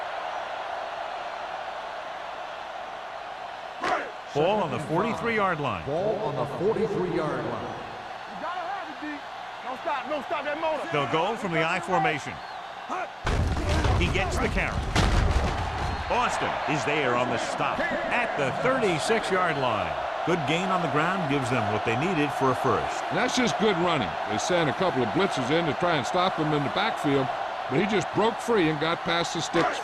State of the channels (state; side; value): identical; both; correlation 1.00